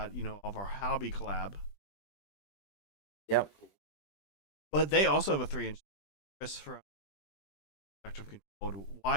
of our hobby collab. Yep. But they also have a 3-inch. Chris from Objective Control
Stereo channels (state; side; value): late; right; 20 ms